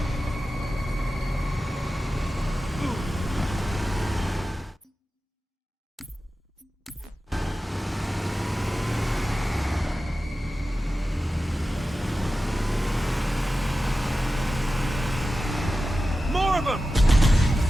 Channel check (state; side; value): normal; both; correlation 0.94